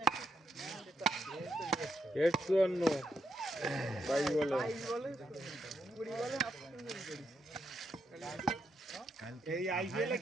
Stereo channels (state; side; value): normal; both; correlation 0.79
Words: 51 ভাই বলে এই আইপিএল এ